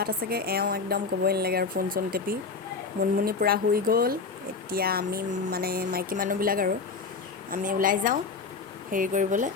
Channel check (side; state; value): right; quieter; 4.7 dB